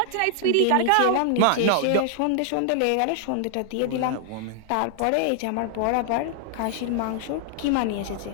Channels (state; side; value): different; both; correlation 0.00